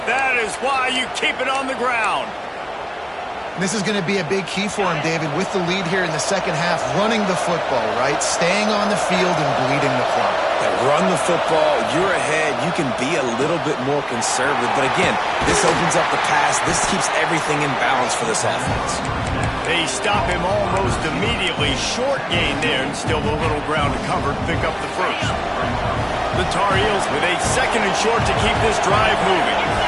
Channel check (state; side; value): identical; both; correlation 1.00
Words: that is why you keep it on the ground. This is going to be a big key for him, David, with the lead here in the second half, running the football, right? Staying on the field and bleeding the clock. Run the football, you're ahead, you can be a little bit more conservative. But again, this opens up the pass. This keeps everything in balance for this offense. They stop him almost immediately. Short gain there, and still a little ground to cover to pick up the first. The Tar Heels with a 2nd and short to keep this drive moving.